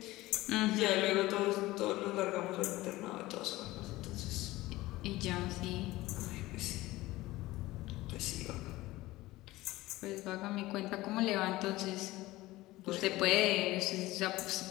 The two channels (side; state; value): right; quieter; 18.3 dB